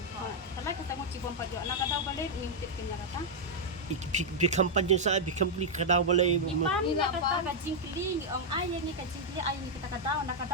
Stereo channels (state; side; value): normal; both; correlation -0.03